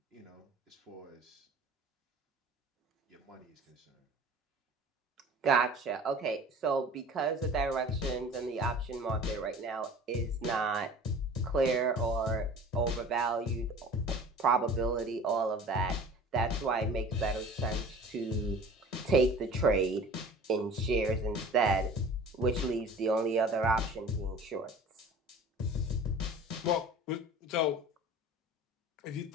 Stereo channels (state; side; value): normal; both; correlation 0.42